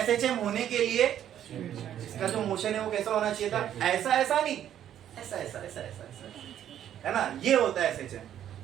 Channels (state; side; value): quieter; left; 10.6 dB